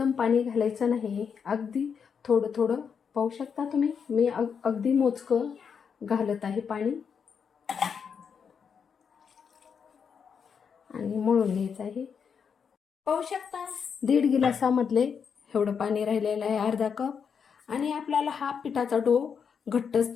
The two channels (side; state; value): right; quieter; 6.7 dB